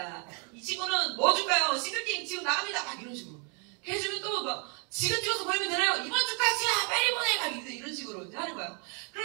이 친구는 뭐 줄까요? 싱글게임 지금 나갑니다. 막 이런 식으로 해주면 또 막 지금 찍어서 보내면 되나요? 이번 주까지야 빨리 보내! 막 이런 식으로 이제 하는 거예요.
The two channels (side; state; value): left; quieter; 36.5 dB